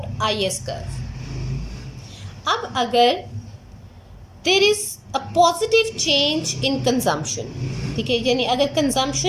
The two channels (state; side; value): identical; both; correlation 1.00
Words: IS curve. अब अगर there is a positive change in consumption, ठीक है, यानी अगर